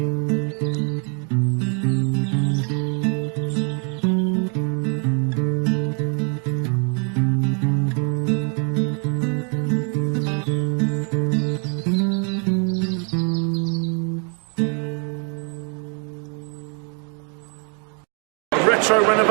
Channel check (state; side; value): quieter; left; 38.7 dB